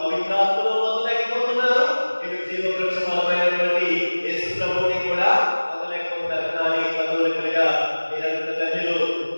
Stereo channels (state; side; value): inverted; both; correlation -1.00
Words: పవిత్రాత్మలో పొందలేకపోతున్నారు, ఇటు జీవ వృక్ష ఫలమైనటువంటి యేసు ప్రభువుని కూడా పొందలేకపోతున్నారు. కానీ కథోలికులుగా మీరంత ధన్యులు,